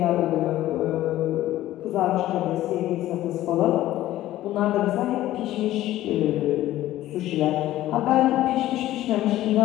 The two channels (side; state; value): right; quieter; 14.6 dB